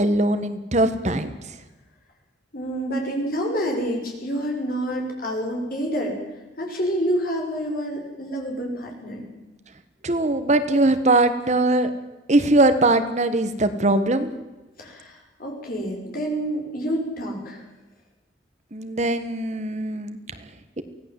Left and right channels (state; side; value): normal; both; correlation 0.37